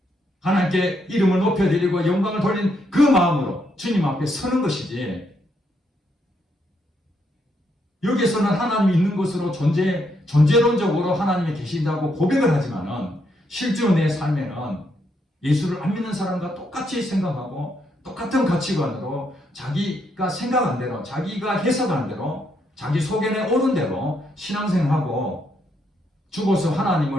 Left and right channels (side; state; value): both; normal; correlation 0.76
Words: 하나님께 이름을 높여드리고 영광을 돌린 그 마음으로 주님 앞에 서는 것이지 여기서는 하나님이 있는 것으로 존재론적으로 하나님이 계신다고 고백을 하지만은 실제로 내 삶에는 예수를 안 믿는 사람과 똑같이 생각하고 똑같은 가치관으로 자기가 생각한 대로 자기가 해석한 대로 자기 속에 오른 대로 신앙생활하고 죽어서